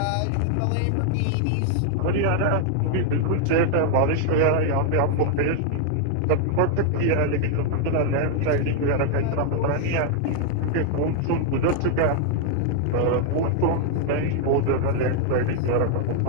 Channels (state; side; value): different; both; correlation 0.00